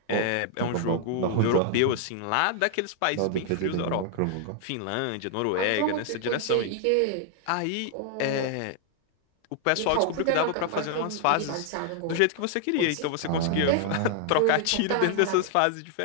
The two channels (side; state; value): both; different; correlation 0.00